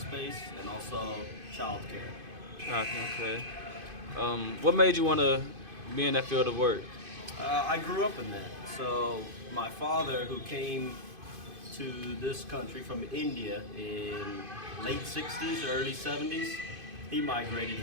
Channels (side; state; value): left; late; 2.5 ms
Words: and also childcare. Okay. What made you want to be in that field of work? I grew up in that. So my father, who came to this country from India in late 60s, early 70s, he migrated